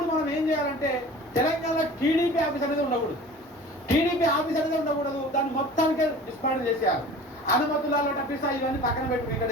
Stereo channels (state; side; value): normal; both; correlation 0.41